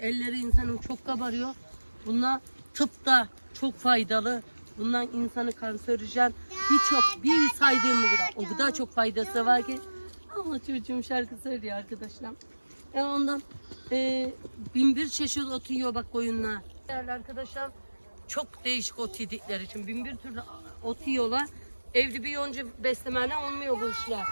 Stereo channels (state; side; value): inverted; both; correlation -1.00